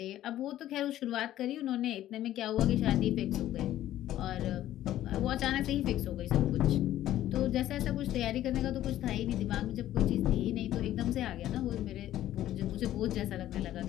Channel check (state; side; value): quieter; right; 13.2 dB